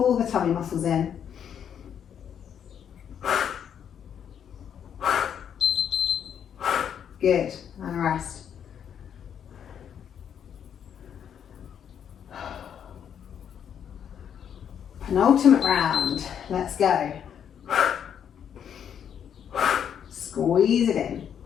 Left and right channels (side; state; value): right; quieter; 8.6 dB